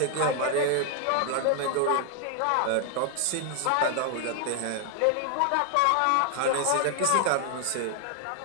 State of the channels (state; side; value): different; both; correlation 0.00